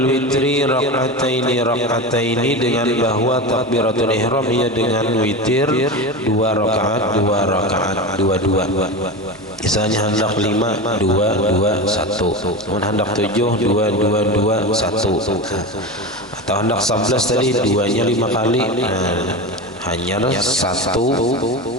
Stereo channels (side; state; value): both; normal; correlation 0.24